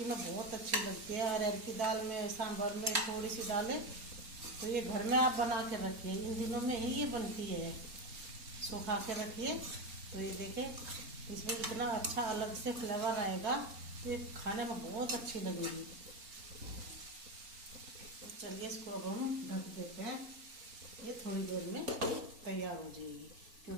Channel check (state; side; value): late; left; 4.2 ms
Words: में बहुत अच्छी लगती है। अरहर की दाल में, सांभर में थोड़ी सी डालें, तो ये घर में आप बना के रखिए, इन दिनों में ही ये बनती है। सुखा के रखिए, तो ये देखें इसमें इतना अच्छा अलग से फ्लेवर आएगा, तो ये खाने में बहुत अच्छी लगेगी। चलिए इसको अब हम ढक देते हैं, ये थोड़ी देर में तैयार हो जाएगी,